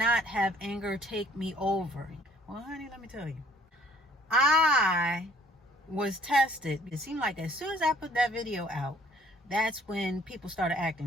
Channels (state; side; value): normal; both; correlation 0.59